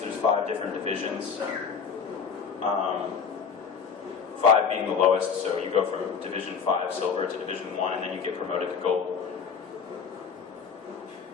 there's 5 different divisions. 5 being the lowest, so you go from Division 5 silver to Division 1, and then you get promoted to gold.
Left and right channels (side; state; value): right; quieter; 6.2 dB